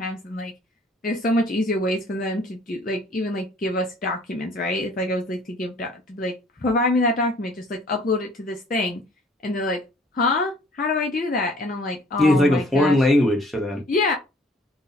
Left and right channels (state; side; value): normal; both; correlation 0.55